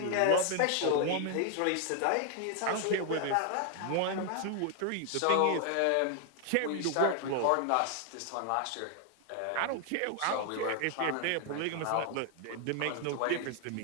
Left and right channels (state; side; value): different; both; correlation 0.00